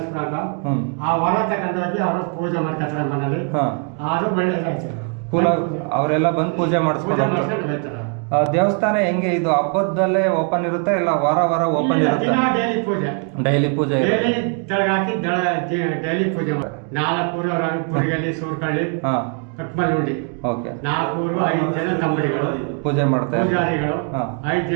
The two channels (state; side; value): quieter; left; 39.6 dB